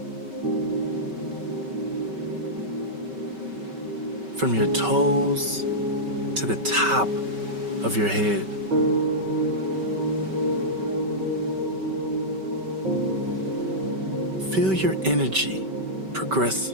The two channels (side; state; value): left; late; 5.2 ms